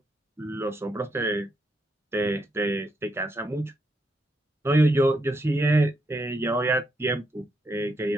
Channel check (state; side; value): normal; both; correlation 0.79